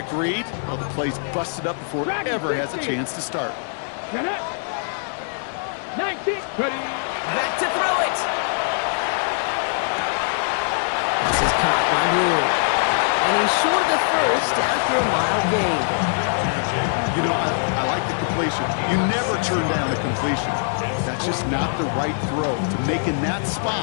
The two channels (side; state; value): right; silent; digital silence